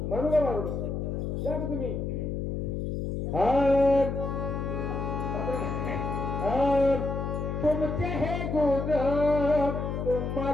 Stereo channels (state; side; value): noise; left; hum, 3 dB below the sound